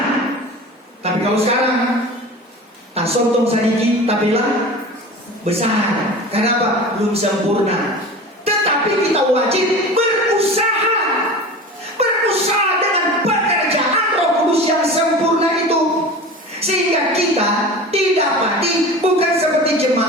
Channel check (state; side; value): normal; both; correlation 0.34